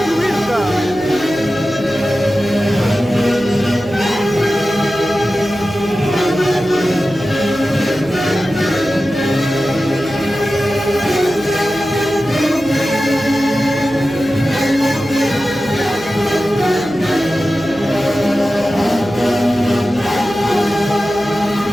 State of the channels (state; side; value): noise; right; hum, 17 dB below the sound